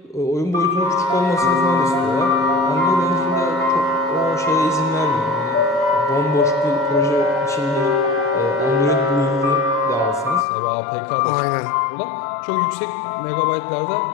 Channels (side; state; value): right; drops out; at 10.5 s